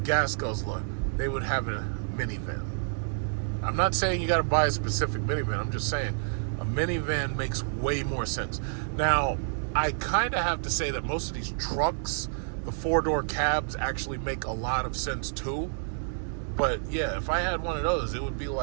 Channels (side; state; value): left; silent; digital silence